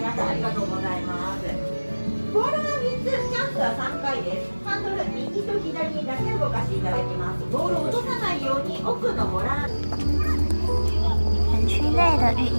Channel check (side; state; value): both; inverted; correlation -1.00